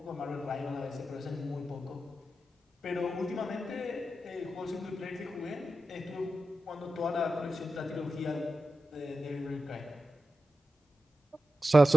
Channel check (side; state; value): both; normal; correlation 0.91